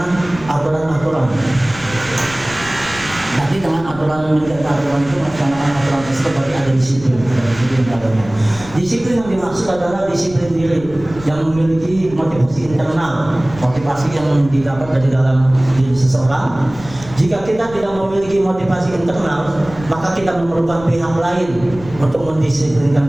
aturan-aturan. Tapi dengan aturan menjaga aturan itu, melaksanakan aturan tersebut berarti ada disiplin. Disiplin yang dimaksud adalah disiplin diri yang memiliki motivasi internal, motivasi yang didapat dari dalam diri seseorang. Jika kita tidak memiliki motivasi internal, maka kita memerlukan pihak lain untuk mendisiplinkan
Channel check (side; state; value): left; noise; rumble, 16 dB below the sound